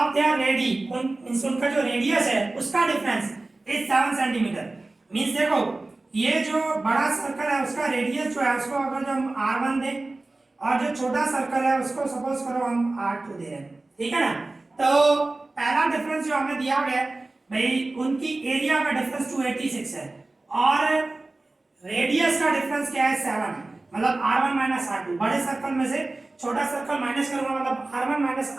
their ready, उनका जो रेडियस है उसका डिफरेंस इज 7 सेंटीमीटर। मींस देखो ये जो बड़ा सर्कल है उसका रेडियस जो है उसको अगर जो हम r1 दें और जो छोटा सर्कल है उसको सपोज करो हम r2 दे रहे हैं, ठीक है ना। तो पहला डिफरेंस जो हमें दिया गया है भाई, उनकी एरिया का डिफरेंस 286 है और रेडियस का डिफरेंस क्या है 7 है, मतलब r1 माइनस r2। बड़े सर्कल में से छोटा सर्कल माइनस करूंगा, मतलब r1 माइनस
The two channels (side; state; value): left; quieter; 3.1 dB